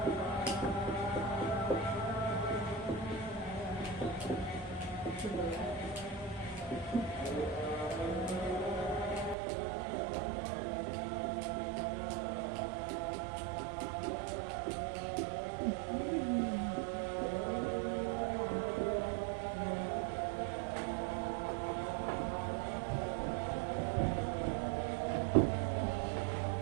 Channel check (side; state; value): left; drops out; at 9.3 s